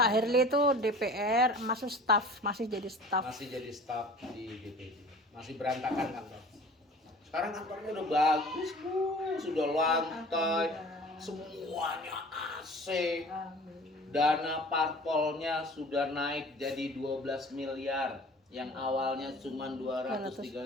Herli itu DPR, masuk staf, masih jadi staf. Masih jadi staf di DPD. Masih berantakan kantor. Sekarang kantornya udah bagus, Bu. Sudah lantai, semuanya AC. Dana parpolnya sudah naik jadi 12 miliar. Yang awalnya cuma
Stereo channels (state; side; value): normal; both; correlation 0.43